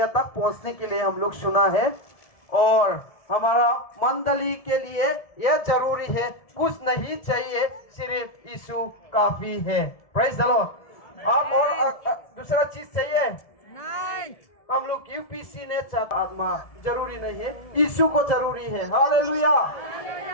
तक पहुंचने के लिए हम लोग सुना है, और हमारा मंडली के लिए यह जरूरी है, कुछ नहीं चाहिए, सिर्फ यीशु काफी है। Praise the Lord. आप और दूसरा चीज चाहिए? नहीं। हम लोग यूपीसी ने आत्मा जरूरी नहीं है, यीशु को जरूरी है। Hallelujah,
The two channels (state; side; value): late; right; 1.7 ms